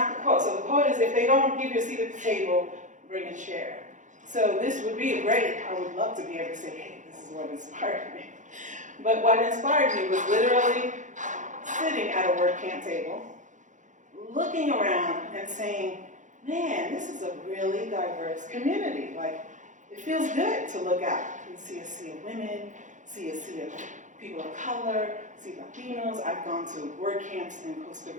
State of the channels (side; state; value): left; late; 0.36 ms